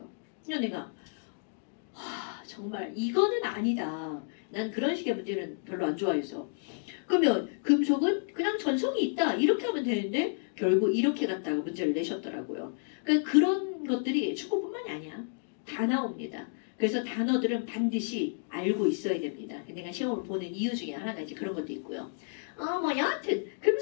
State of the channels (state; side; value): silent; right; digital silence